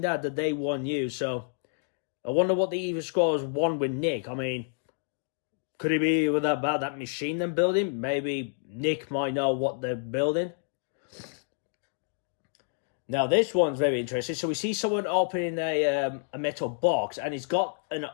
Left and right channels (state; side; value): silent; right; digital silence